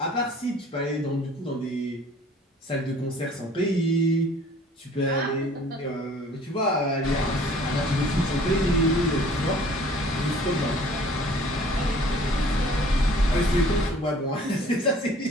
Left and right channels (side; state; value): both; normal; correlation 0.52